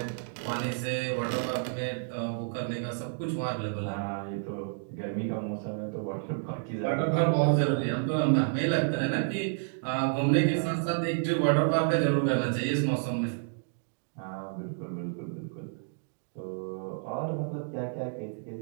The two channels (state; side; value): silent; left; digital silence